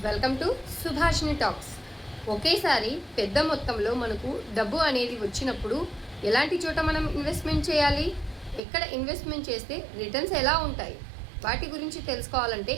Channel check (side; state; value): left; drops out; at 8.6 s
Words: welcome to Subhashini talks. ఒకేసారి పెద్ద మొత్తంలో మనకు డబ్బు అనేది వచ్చినప్పుడు ఎలాంటి చోట మనం ఇన్వెస్ట్మెంట్ చేయాలి, ఎక్కడ ఇన్వెస్ట్మెంట్ చేస్తే రిటర్న్స్ ఎలా ఉంటాయి, వాటి గురించి తెలుసుకోవాలంటే